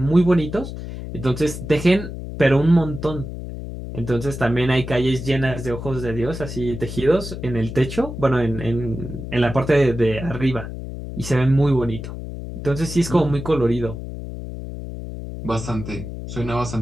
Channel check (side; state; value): left; noise; hum, 9 dB below the sound